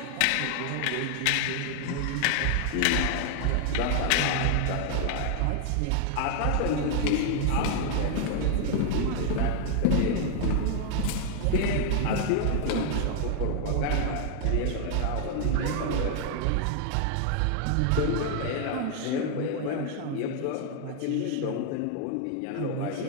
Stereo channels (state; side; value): different; both; correlation 0.00